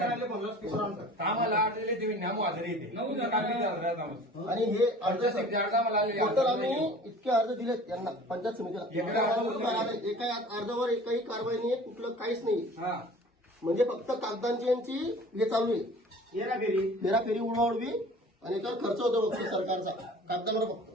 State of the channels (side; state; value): both; normal; correlation 0.45